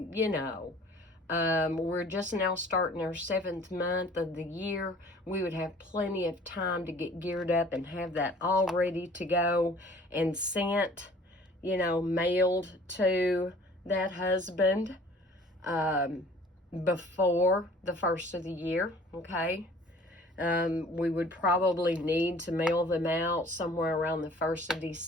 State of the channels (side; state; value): both; normal; correlation 0.51